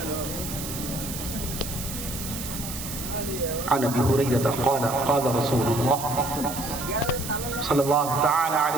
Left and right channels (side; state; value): right; noise; hiss, 8 dB below the sound